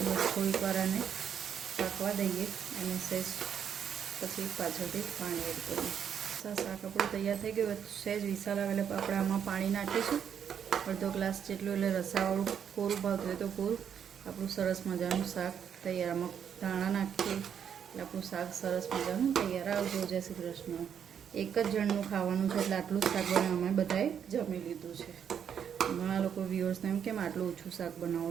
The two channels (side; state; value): left; quieter; 8.2 dB